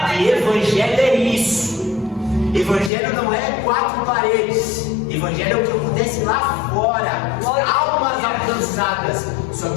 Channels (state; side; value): drops out; right; at 2.9 s